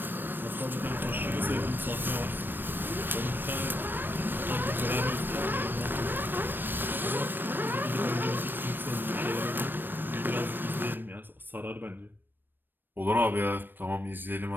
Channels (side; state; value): left; late; 0.094 ms